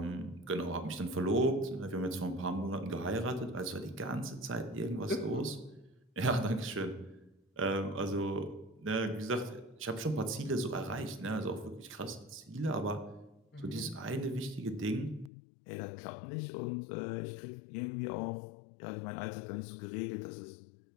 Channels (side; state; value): right; drops out; at 15.3 s